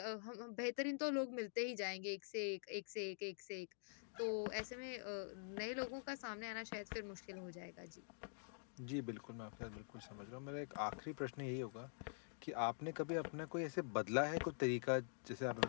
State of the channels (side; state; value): right; silent; digital silence